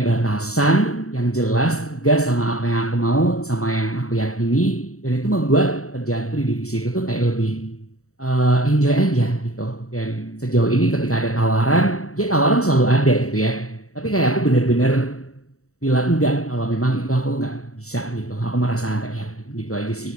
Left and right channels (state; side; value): late; right; 0.64 ms